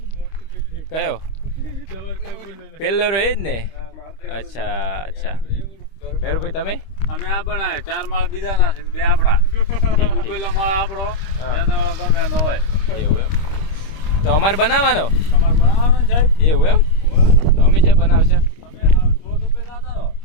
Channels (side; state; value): right; late; 25 ms